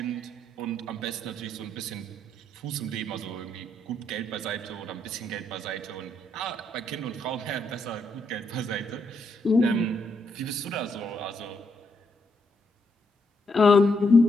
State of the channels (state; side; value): normal; both; correlation 0.77